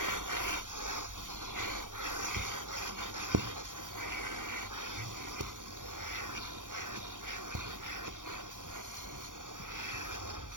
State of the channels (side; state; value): left; late; 0.88 ms